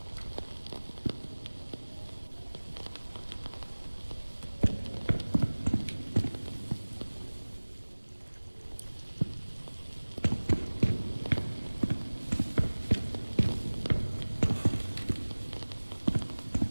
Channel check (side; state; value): both; inverted; correlation -1.00